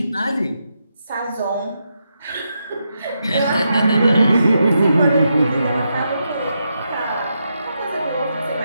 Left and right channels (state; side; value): inverted; both; correlation -0.84